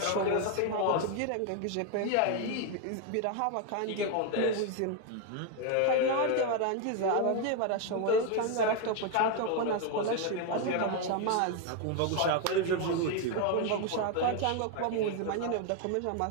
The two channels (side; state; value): both; different; correlation 0.01